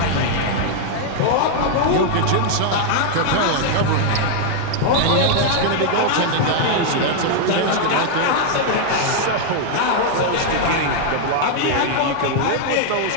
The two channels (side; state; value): both; different; correlation 0.00